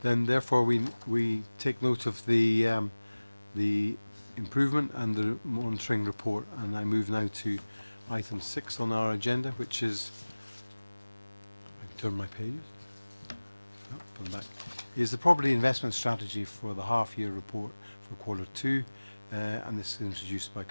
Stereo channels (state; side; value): inverted; both; correlation -1.00